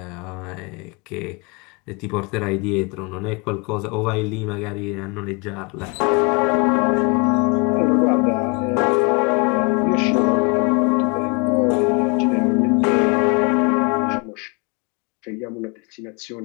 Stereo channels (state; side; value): quieter; right; 32.6 dB